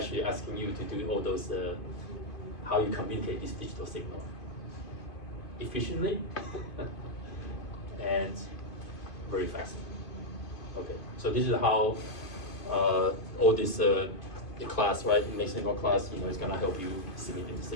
asking you to do all those, how you communicate this digital signal efficiently and very fast. Okay, so this is how all this the class, right, mixed signal class, is gonna help you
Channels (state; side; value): late; right; 2.4 ms